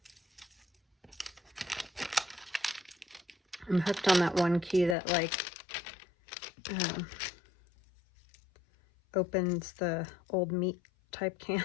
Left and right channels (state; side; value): drops out; right; at 5.0 s